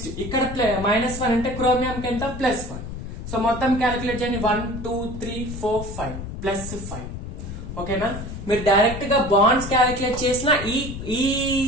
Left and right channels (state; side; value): noise; left; rumble, 8 dB below the sound